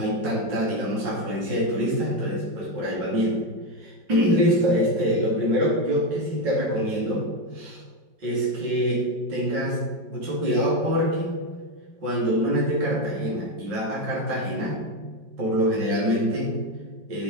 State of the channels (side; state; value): left; late; 5.4 ms